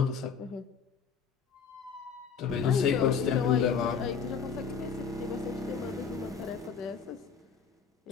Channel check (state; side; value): quieter; right; 6.3 dB